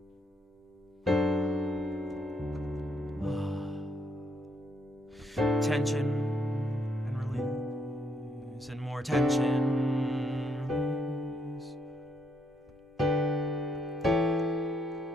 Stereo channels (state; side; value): normal; both; correlation 0.73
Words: tension and release, and more tension, release.